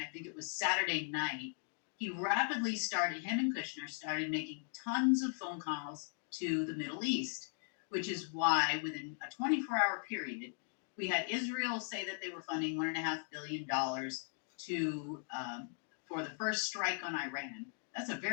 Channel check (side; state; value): right; silent; 52 dB below the other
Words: think it was Saturday night, him and Kushner started making tons of phone calls to the Middle East, which is why within a 24-hour period, we had Israel say that they were funding $1.5 billion to for the first strike on Iran. That's a